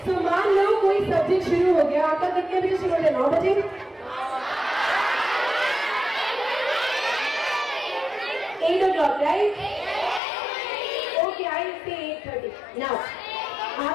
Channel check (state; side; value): drops out; right; at 10.2 s